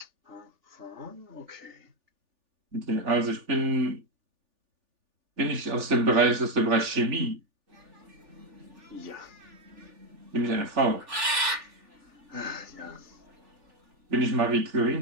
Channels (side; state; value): left; late; 3.4 ms